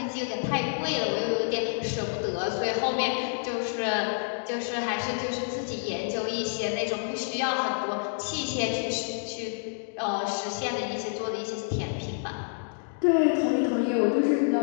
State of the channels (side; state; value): right; silent; digital silence